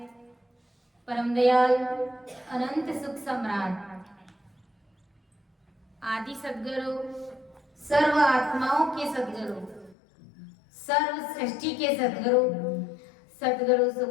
परम दयाल अनंत सुख सम्राट आदि सद्गुरु सर्व आत्माओं के सद्गुरु सर्व सृष्टि के सद्गुरु सतगुरु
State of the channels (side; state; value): right; drops out; at 10.0 s